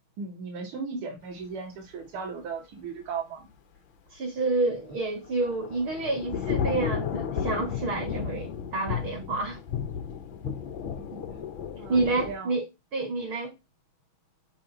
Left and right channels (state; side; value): late; left; 6.4 ms